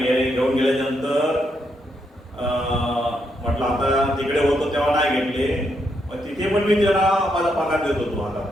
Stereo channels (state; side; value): normal; both; correlation 0.79